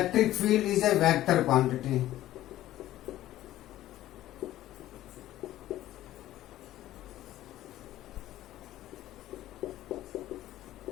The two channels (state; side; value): quieter; right; 14.2 dB